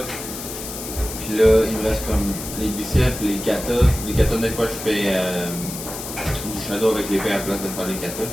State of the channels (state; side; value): noise; left; hiss, 9 dB below the sound